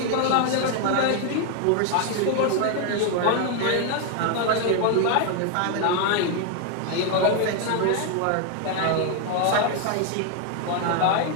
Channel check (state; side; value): different; both; correlation 0.01